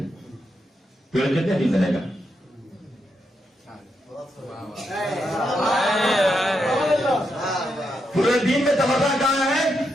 پیڑ کتنے دن رہے گا؟ پورے دن میں تبادلہ کہاں ہے؟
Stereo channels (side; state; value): both; normal; correlation 0.82